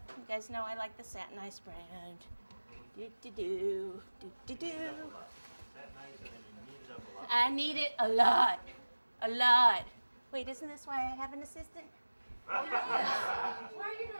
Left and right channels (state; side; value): inverted; both; correlation -1.00